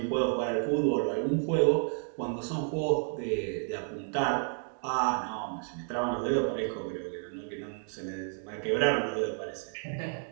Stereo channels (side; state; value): left; silent; 57 dB below the other